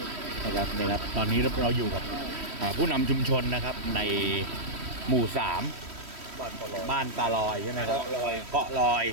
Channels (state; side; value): late; left; 3.1 ms